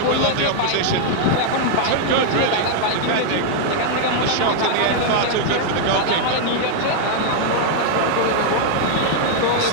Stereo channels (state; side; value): different; both; correlation -0.01